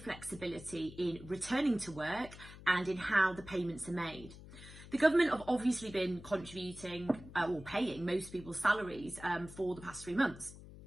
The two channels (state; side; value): noise; left; hum, 16 dB below the sound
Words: in returning to work and in how the payments are made. The government have obviously been contributing or paying most people's salaries for the past 3 months.